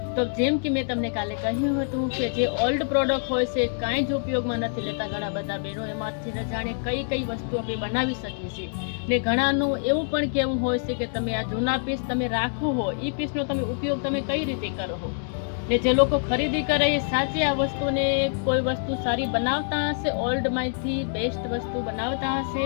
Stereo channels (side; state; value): right; silent; digital silence